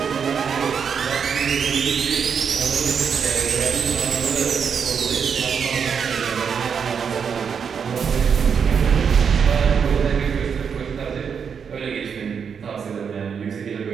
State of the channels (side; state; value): left; quieter; 6.8 dB